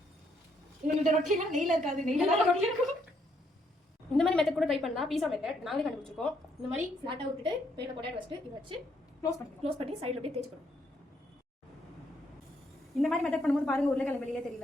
இந்த ரொட்டிலாம் நெய்ல இருக்காது, நெய்ல ரொட்டி இருக்கும். இந்த மாதிரி மெத்தட் கூட ட்ரை பண்ணலாம். பீஸா மெத்தட் நாங்களே கண்டுபிடிச்சிருக்கோம். இந்த மாதிரி ஃபிளாட்டா விட்டுட்டு பேரில் பொட்டேட்டோ வச்சுட்டு இதை வச்சு க்ளோஸ் பண்ணி சைடில் அப்படியே தேய்ச்சிக்கணும். இந்த மாதிரி மெத்தட் பண்ணும்போது பாருங்க, உருளைக்கிழங்கு வெளியே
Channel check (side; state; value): both; normal; correlation 0.72